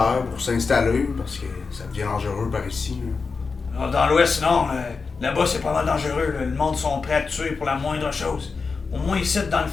pour s'installer, parce que ça devient dangereux par ici. Là. Ah, dans l'ouest, non. Là-bas, c'est pas mal dangereux. Là. Le monde sont prêts à te tuer pour la moindre chose. Au moins ici, dans le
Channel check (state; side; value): quieter; right; 4.7 dB